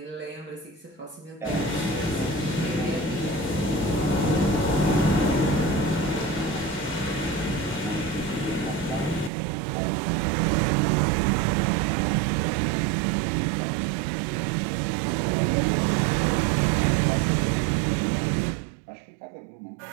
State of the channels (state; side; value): drops out; left; at 9.3 s